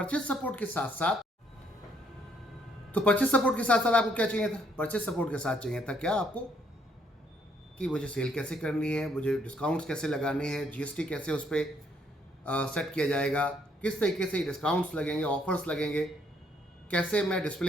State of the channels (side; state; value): both; normal; correlation 0.69